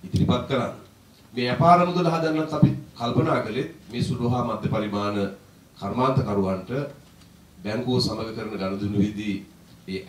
ඉදිරිපත් කරන්න. මේ අපාර මුදල හදන්නත් අපි කල්පනා කළේ මේ සුළු හා මධ්‍ය පරිමාණ කර්මාන්තකරුවන්ට බැංකුව සමග කරන ගනුදෙනුවේදී ඒ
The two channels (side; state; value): both; identical; correlation 1.00